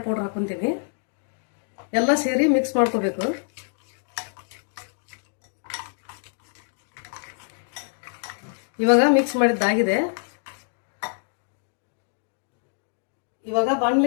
ಪೌಡರ್ ಹಾಕ್ಕೊಂತೀನಿ. ಎಲ್ಲ ಸೇರಿ ಮಿಕ್ಸ್ ಮಾಡ್ಕೋಬೇಕು. ಇವಾಗ ಮಿಕ್ಸ್ ಮಾಡಿದ್ದಾಗಿದೆ. ಇವಾಗ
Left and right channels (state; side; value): silent; right; digital silence